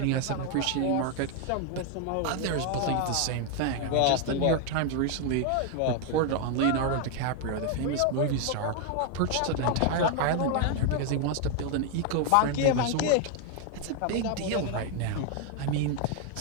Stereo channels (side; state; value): both; different; correlation 0.00